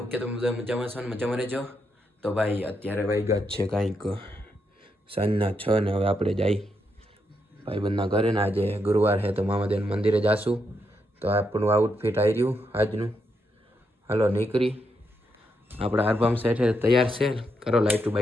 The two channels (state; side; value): normal; both; correlation 0.81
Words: કે તમે બધા મજામાં છો ને મજામાં રહેજો. તો ભાઈ અત્યારે વાગ્યા જ છે કાંઈક સાંજના 6 ને હવે આપણે જઈ ભાઈબંધના ઘરે ને આજે ગુરુવાર છે તો મામાદેવ મંદિરે જાશું. તો આપણું આઉટફિટ આવી રહ્યું આજનું. હાલો નીકળી આપણા આરબામ સેઠે તૈયાર છે. કરો લાઈટું